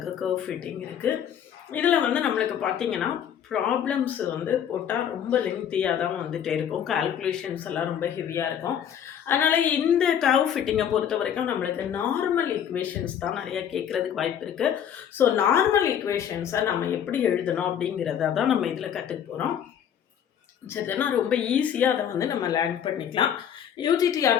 கர்வ் ஃபிட்டிங் இருக்குது. இதில் வந்து நம்மளுக்கு பார்த்திங்கன்னா ப்ராப்ளம்ஸ் வந்து போட்டால் ரொம்ப லெங்க்தியாக தான் வந்துகிட்டே இருக்கும். கால்குலேஷன்ஸ் எல்லாம் ரொம்ப ஹெவியாக இருக்கும். அதனால் இந்த கர்வ் ஃபிட்டிங்கை பொறுத்த வரைக்கும் நம்மளுக்கு நார்மல் ஈக்குவேஷன்ஸ் தான் நிறையா கேட்குறதுக்கு வாய்ப்பு இருக்குது. ஸோ நார்மல் ஈக்குவேஷன்ஸை நம்ம எப்படி எழுதணும் அப்படிங்கிறத தான் நம்ம இதில் கற்றுக்க போகிறோம். சரிதானா? ரொம்ப ஈஸியாக அதை வந்து நம்ம லேர்ன் பண்ணிக்கலாம்.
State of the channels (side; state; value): right; quieter; 9.0 dB